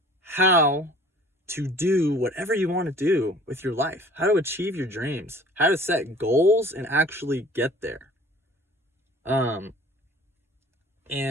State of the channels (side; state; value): both; normal; correlation 0.49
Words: how to do whatever you want to do with your life, how to achieve your dreams, how to set goals and actually get there. And